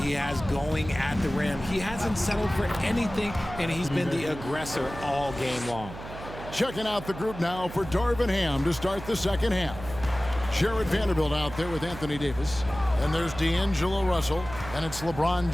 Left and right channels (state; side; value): noise; right; hum, 12 dB below the sound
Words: has going at the rim. He hasn't settled for anything, and he's been the aggressor all game long. Checking out the group now for Darvin Ham to start the second half. Jared Vanderbilt out there with Anthony Davis. And there's D'Angelo Russell, and it's LeBron